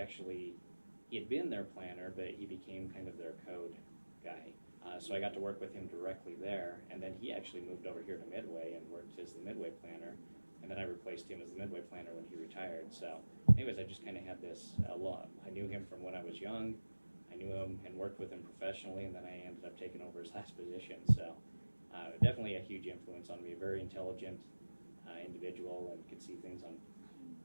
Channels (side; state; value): both; inverted; correlation -1.00